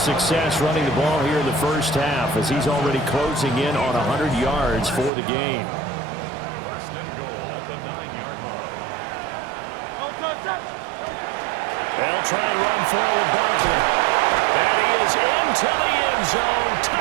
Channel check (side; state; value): left; drops out; at 5.1 s